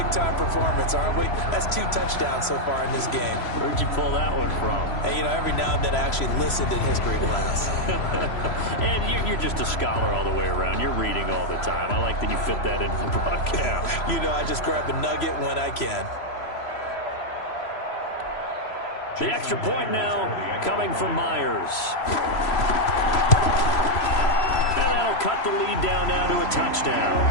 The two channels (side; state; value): right; late; 3.0 ms